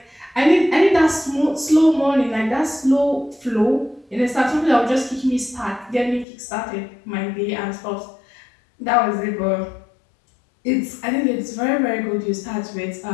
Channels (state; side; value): drops out; right; at 6.2 s